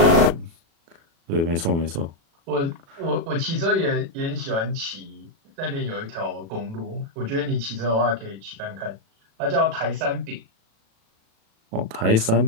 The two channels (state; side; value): late; left; 36 ms